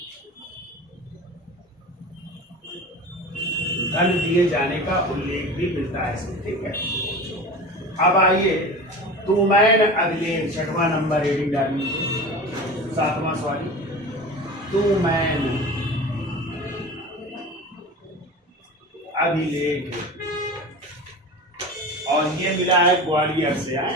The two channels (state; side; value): normal; both; correlation 0.33